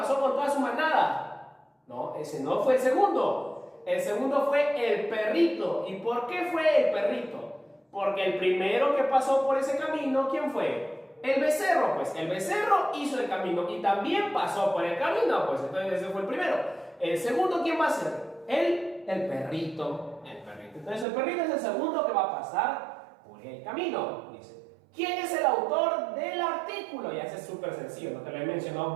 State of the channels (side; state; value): left; drops out; at 21.1 s